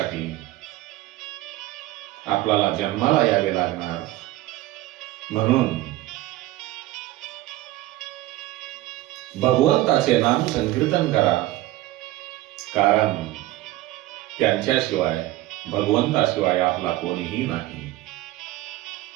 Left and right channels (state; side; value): quieter; left; 16.5 dB